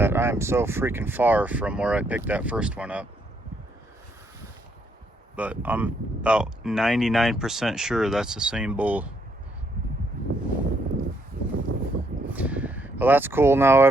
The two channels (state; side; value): normal; both; correlation 0.73